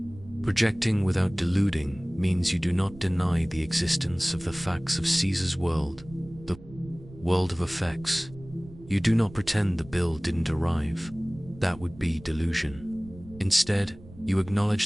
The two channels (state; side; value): noise; right; rumble, 19 dB below the sound